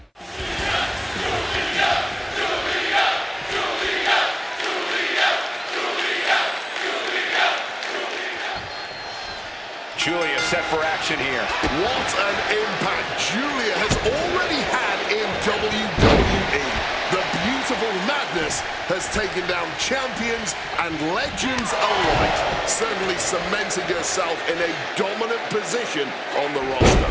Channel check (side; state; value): both; identical; correlation 1.00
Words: Julia set for action here. What an impact Julia has already had in WWE. The beautiful madness has taken down champions and legends alike, certainly cementing herself in a dominant position on the roster.